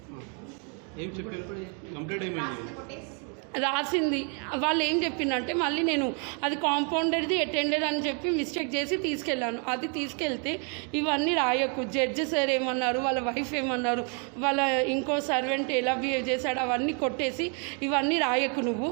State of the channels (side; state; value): left; quieter; 38.2 dB